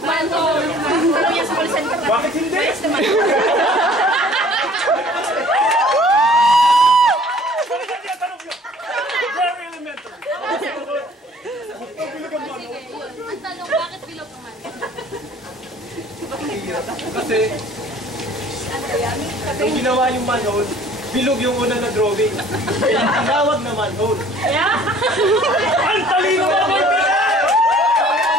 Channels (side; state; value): both; normal; correlation 0.52